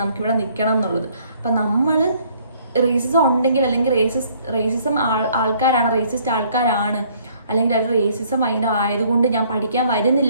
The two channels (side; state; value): both; inverted; correlation -0.62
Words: നമുക്കിവിടെ നിൽക്കണം എന്നുള്ളത്. അപ്പം നമ്മൾ റേസിസം ഉണ്ടെങ്കിൽ, അല്ലെങ്കിൽ റേസിസം റേസിസ്റ്റ് ആൾക്കാരാണ്, അല്ലെങ്കിൽ അത് റേസിസം ഭയങ്കര ആയതുകൊണ്ട് ഞാൻ പഠിക്കാൻ